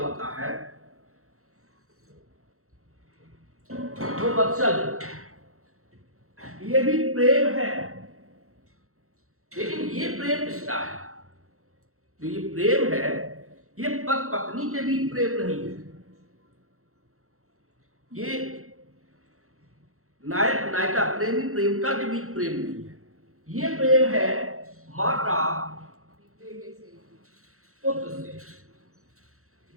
होता है वो वत्सल। ये भी प्रेम है, लेकिन ये प्रेम किसका है, जो ये प्रेम है, ये पति पत्नी के बीच प्रेम नहीं है, ये नायक नायिका, प्रेमी प्रेमिका के बीच प्रेम नहीं है। ये प्रेम है माता पुत्र से,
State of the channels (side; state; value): left; late; 0.63 ms